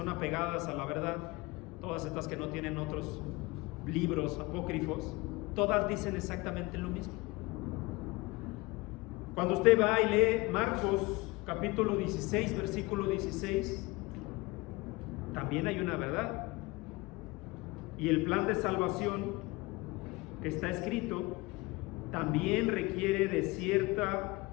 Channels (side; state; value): right; quieter; 23.1 dB